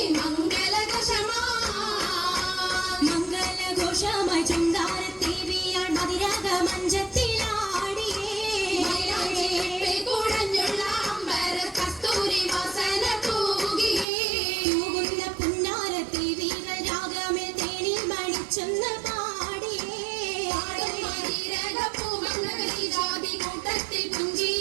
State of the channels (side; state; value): left; drops out; at 14.1 s